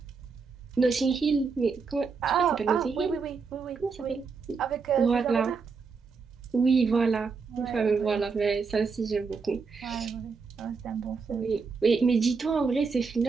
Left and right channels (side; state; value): left; quieter; 5.0 dB